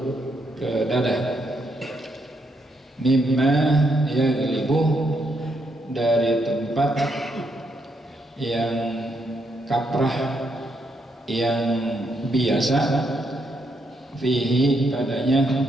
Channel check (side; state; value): both; normal; correlation 0.77